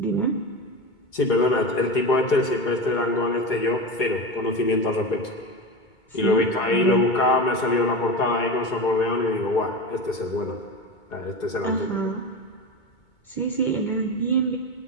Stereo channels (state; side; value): late; right; 2.2 ms